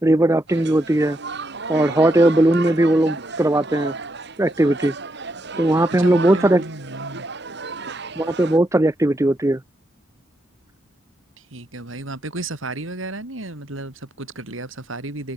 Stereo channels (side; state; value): both; normal; correlation 0.81